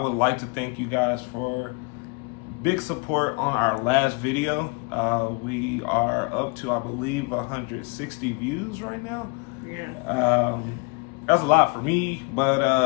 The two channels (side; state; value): right; quieter; 31.0 dB